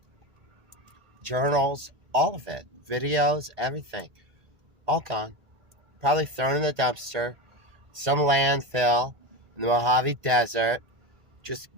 Journals, all of it. Videos, everything. All gone. Probably thrown in the dumpster. Some landfill in the Mojave Desert. Just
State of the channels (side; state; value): left; late; 1.8 ms